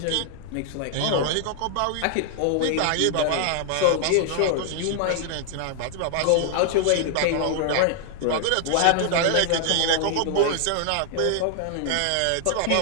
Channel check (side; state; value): both; different; correlation 0.00